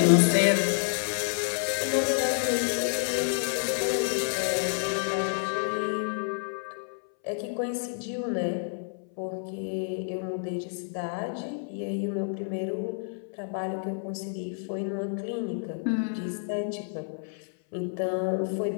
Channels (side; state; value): right; silent; 59 dB below the other